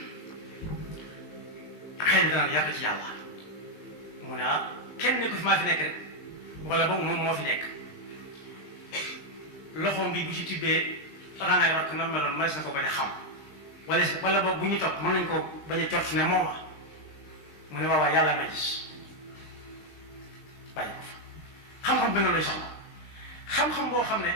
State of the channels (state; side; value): late; right; 20 ms